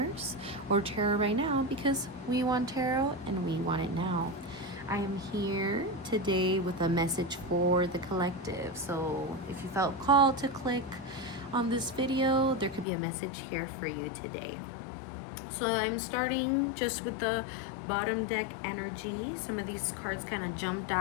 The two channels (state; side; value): drops out; right; at 12.9 s